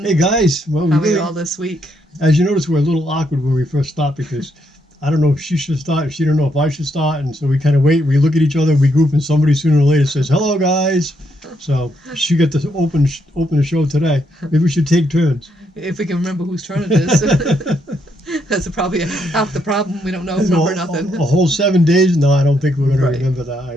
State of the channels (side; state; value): both; normal; correlation 0.76